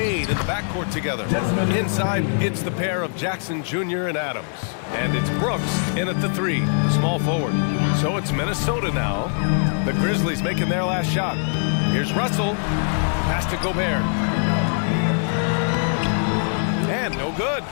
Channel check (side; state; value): right; silent; 64 dB below the other